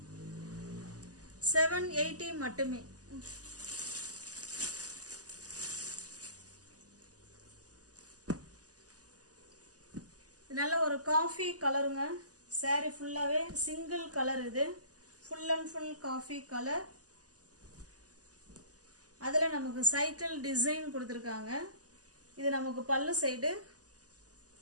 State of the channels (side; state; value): left; late; 0.67 ms